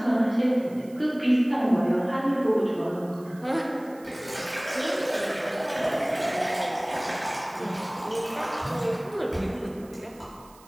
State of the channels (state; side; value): noise; right; hiss, 26 dB below the sound